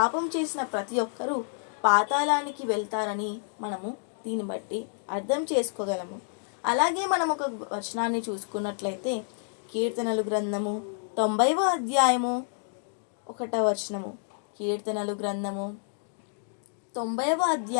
చేసిన ప్రతి ఒక్కరూ పాతాళానికి వెళ్తారని మనము దీన్ని బట్టి అర్థం చేసుకోగలము. అలాగే మనం ఒక వచనాన్ని చూసుకున్నట్లయితే, కీర్తనలు గ్రంథము 90వ అధ్యాయము 1వ వచనము. కీర్తనలు గ్రంథము 90వ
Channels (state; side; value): silent; right; digital silence